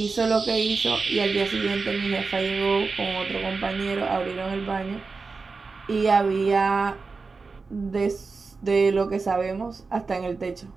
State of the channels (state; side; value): quieter; left; 4.3 dB